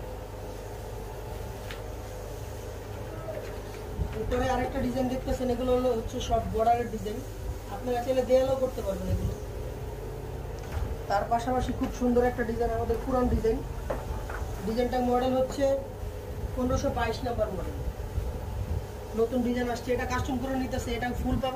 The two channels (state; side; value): identical; both; correlation 1.00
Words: এরপরে আরেকটা ডিজাইন দেখতেছেন, এগুলো হচ্ছে সব বর্ডারের ডিজাইন। আপনারা চাইলে দেয়ালও করতে পারবেন এগুলো। তার পাশাপাশি খুব সুন্দর একটা ডিজাইন, আমাদের পুরান ডিজাইন। ডিজাইনটার মডেল হচ্ছে 1522 নাম্বার মডেল, নতুন ডিজাইন আসছে। এটা কাস্টম করে নিতেছে। এটা ফুল